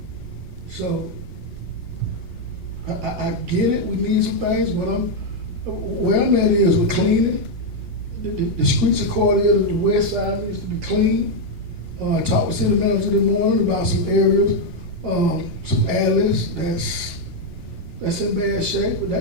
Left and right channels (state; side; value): late; left; 1.8 ms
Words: So, I get it, we need some things, but where I'm at is we're cleaning. The streets of Cordele, the west side needs to be clean. I talked with city manager this morning about some areas, some alleys that's in bad shape,